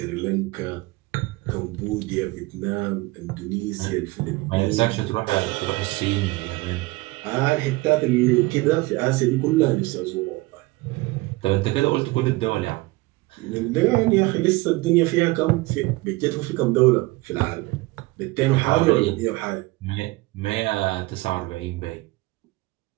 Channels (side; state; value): left; quieter; 21.9 dB